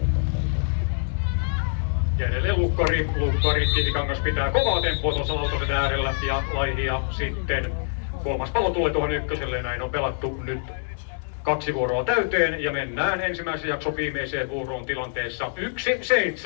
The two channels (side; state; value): right; silent; digital silence